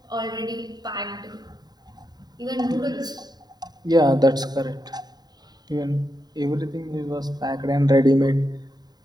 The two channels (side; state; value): left; late; 0.20 ms